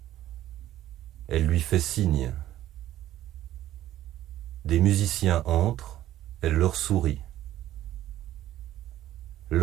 Elle lui fait signe. Des musiciens entrent, elle leur sourit.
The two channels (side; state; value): left; quieter; 13.4 dB